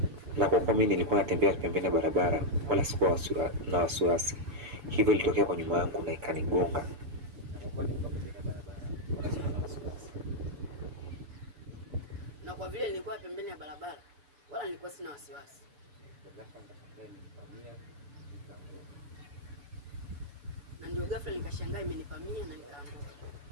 Na kwa kuwa mimi nilikuwa natembea pembeni ya barabara wala sikuwa na wasiwasi, hivyo ilitokea kwa nyuma yangu na ikanigonga. Na kwa vile nilikuwa pembeni ya barabara wala nilikuwa sina wasiwasi. Na ndio ghafla nikashangaa imenipamia na nikaanguka.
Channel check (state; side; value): late; left; 6.9 ms